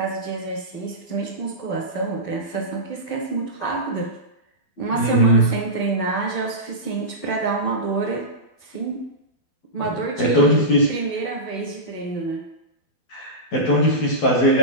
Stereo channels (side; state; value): right; late; 12 ms